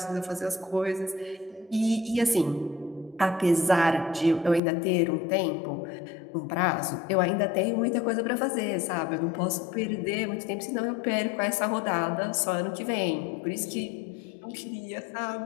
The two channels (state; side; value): drops out; right; at 4.6 s